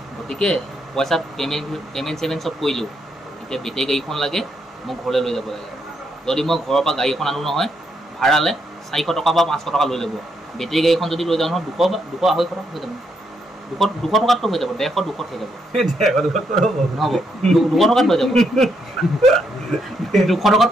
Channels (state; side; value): normal; both; correlation 0.77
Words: গতিকে পইচা পে'মেণ্ট চব কৰিলোঁ এতিয়া বেটেৰী গাড়ীখন লাগে মোক ঘৰলৈ লৈ যাব লাগে যদি মই ঘৰৰ পৰা গাড়ী এখন আনো নহয় ভাড়ালে 400 টকা বা 500 টকা লৈ ল'ব বেটেৰী গাড়ীখন যদি লৈ যাওঁ নহয় 200 250 টকা হৈ যাব 200 টকাততো হৈ যাব 150 200 হৈ যাব নহ'ব 200 টকাত হৈ যাব 200 টকাত